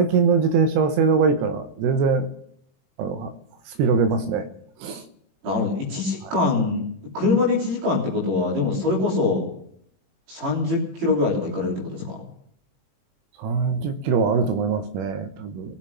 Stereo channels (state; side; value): late; left; 21 ms